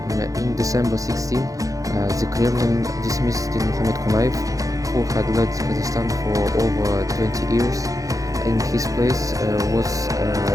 In December 16, the Kremlin dismissed Mohamed Konayev, who had led Kazakhstan for over 20 years. In his place was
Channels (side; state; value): left; late; 0.17 ms